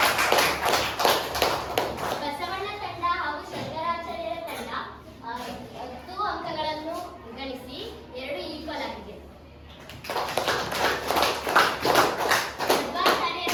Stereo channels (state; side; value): identical; both; correlation 1.00